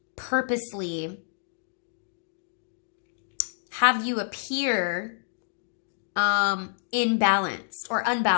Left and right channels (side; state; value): right; silent; digital silence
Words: purposely have you appear imbalanced or